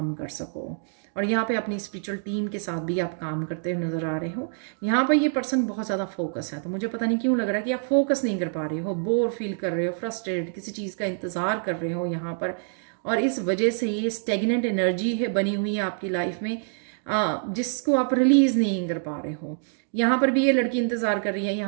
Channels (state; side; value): silent; left; digital silence